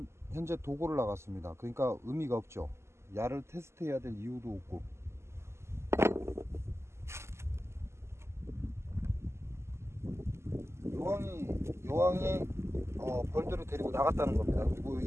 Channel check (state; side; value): late; left; 0.13 ms